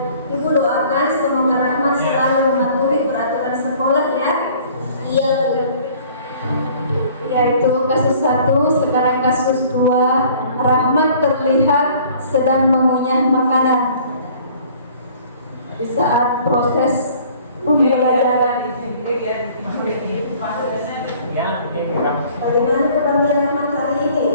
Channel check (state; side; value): inverted; both; correlation -0.53